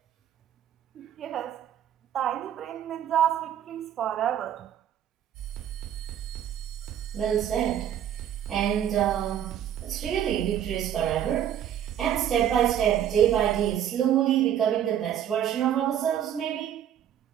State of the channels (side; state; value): left; quieter; 10.1 dB